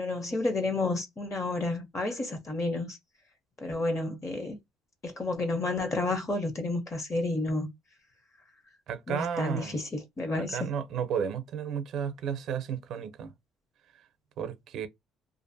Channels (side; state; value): both; normal; correlation 0.65